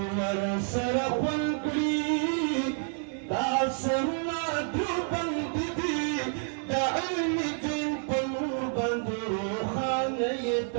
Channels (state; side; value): silent; left; 55 dB below the other